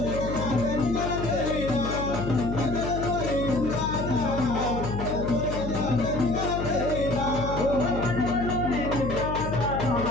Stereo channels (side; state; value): left; noise; hum, 5 dB below the sound